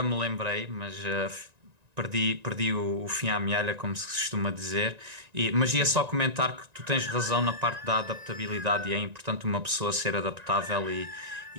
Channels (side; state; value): left; late; 1.9 ms